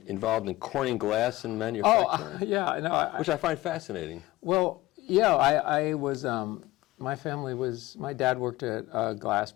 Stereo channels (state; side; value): quieter; right; 18.3 dB